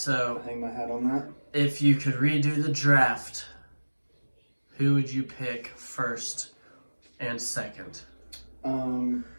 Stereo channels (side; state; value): both; inverted; correlation -1.00